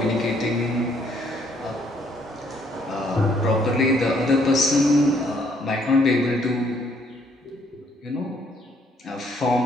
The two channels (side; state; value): both; normal; correlation 0.66